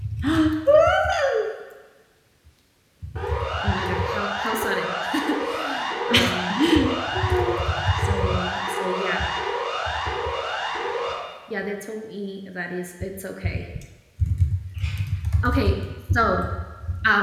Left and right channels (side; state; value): both; identical; correlation 1.00